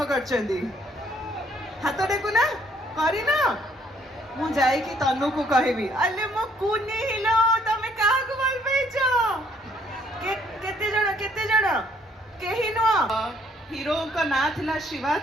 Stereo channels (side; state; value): both; normal; correlation 0.65